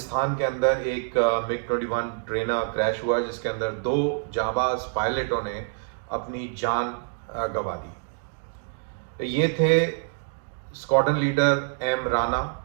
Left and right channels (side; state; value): left; silent; 61 dB below the other